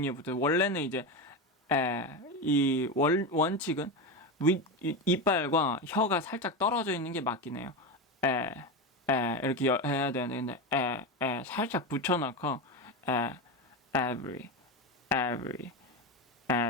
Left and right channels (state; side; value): normal; both; correlation 0.17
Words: 붙어. 원래는 이제 이 원칙은 이빨과 혀가 살짝 떨어져 있는 게 맞긴 해요. 이렇게 해야 되는데, 근데 살짝 붙여놓고 every